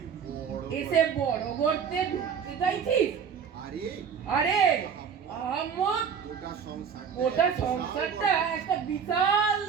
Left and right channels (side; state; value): left; quieter; 7.0 dB